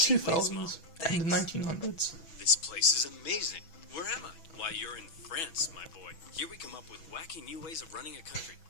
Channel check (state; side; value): late; right; 6.1 ms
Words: and the 1900s. This place is amazing. Where am I? Why, you're in France, my boy. Here we come up with wacky new ways of running a country.